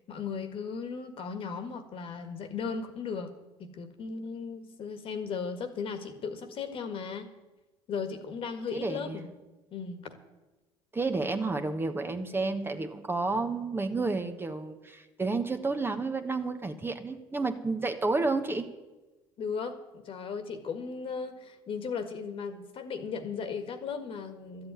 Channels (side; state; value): both; normal; correlation 0.68